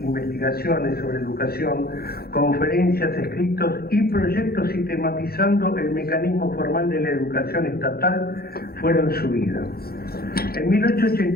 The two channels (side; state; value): right; late; 0.45 ms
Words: sobre educación, conferencias, escritos y proyectos sistematizando el mecanismo formal de la educación estatal fueron su vida. En